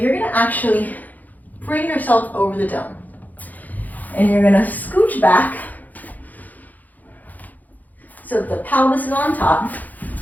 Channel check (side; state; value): right; late; 0.081 ms